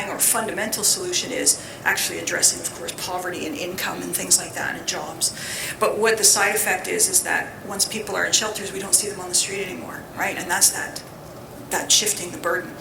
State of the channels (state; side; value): identical; both; correlation 1.00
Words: or fundamental solution is actually addressing, of course, poverty and income and things like that and jobs. But what the side effect is that once people are in shelters, we don't see them on the street anymore, right? And that's that shifting the burden.